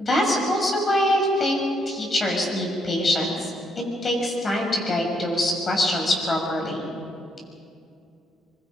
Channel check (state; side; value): normal; both; correlation 0.74